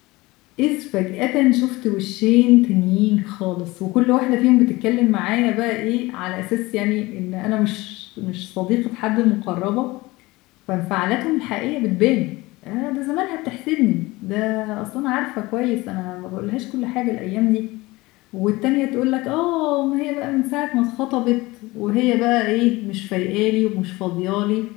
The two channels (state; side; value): quieter; right; 21.0 dB